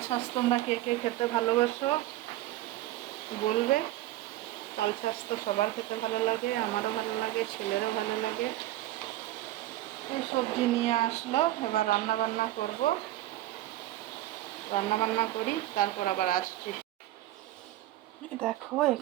শাঁস তোমরা কে কে খেতে ভালোবাসো বলবে। তাল শাঁস তো সবার খেতে ভালো লাগে, আমারও ভালো লাগে, ছেলেরও ভালো লাগে। এই সবজি নিয়ে আসলো, এবার রান্না বান্না করব। রান্না বান্না করি, তারপর আবার আসছি। দেখো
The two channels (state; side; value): quieter; left; 15.3 dB